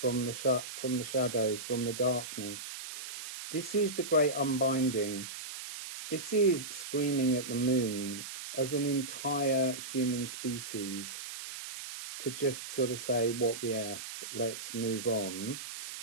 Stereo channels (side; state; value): right; noise; hiss, 9 dB below the sound